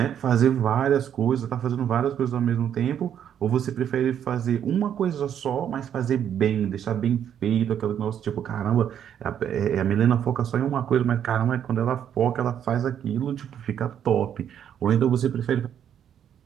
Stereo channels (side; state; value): left; quieter; 9.3 dB